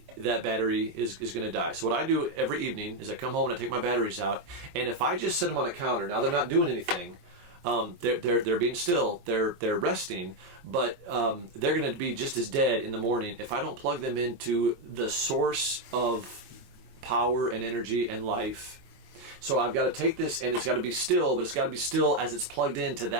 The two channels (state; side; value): late; left; 23 ms